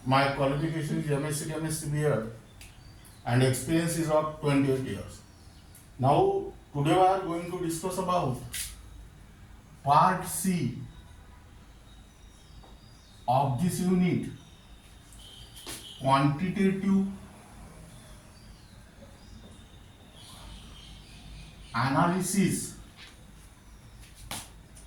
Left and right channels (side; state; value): both; identical; correlation 1.00